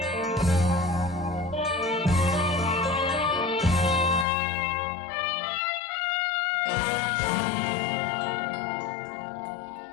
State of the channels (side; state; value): right; drops out; at 4.2 s